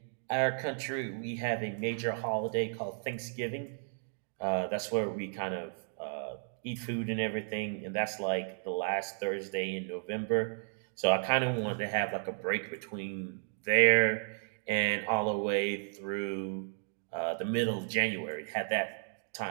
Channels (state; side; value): silent; left; 55 dB below the other